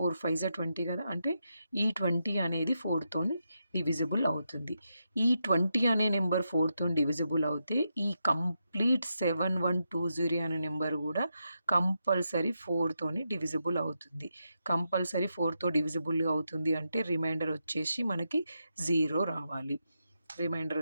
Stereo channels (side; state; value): both; inverted; correlation -0.85